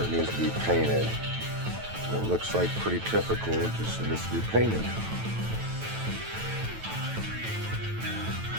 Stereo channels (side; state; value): left; late; 9.1 ms